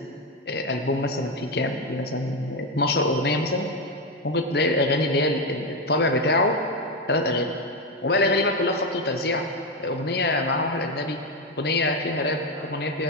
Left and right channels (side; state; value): both; normal; correlation 0.10